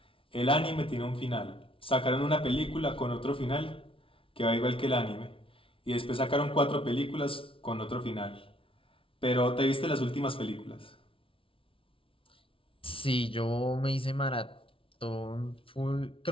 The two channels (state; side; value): late; right; 0.26 ms